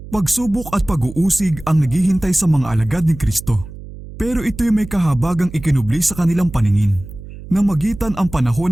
Pagsubok at pag-uusig ang naghihintay sa mga alagad ni Kristo. Pero ito'y may kahabagang ikinubli sa kanilang paningin, na magitan ang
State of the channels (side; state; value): right; noise; hum, 14 dB below the sound